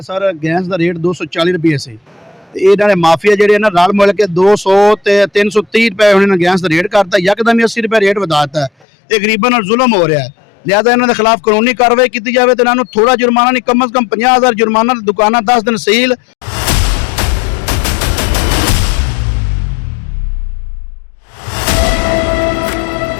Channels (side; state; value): right; drops out; at 8.8 s